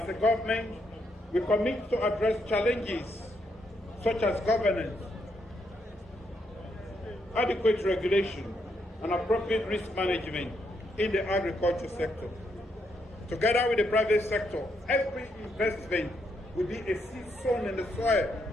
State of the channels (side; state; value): both; normal; correlation 0.77